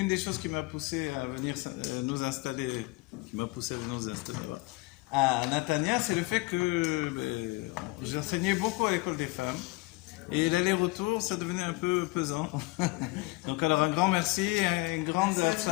des choses qui m'a poussé à venir nous installer, voilà, à Natania, c'est le fait que j'enseignais beaucoup à l'école des femmes. Et l'aller-retour, ça devenait un peu pesant. Donc alors un grand merci, une grande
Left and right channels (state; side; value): quieter; right; 23.2 dB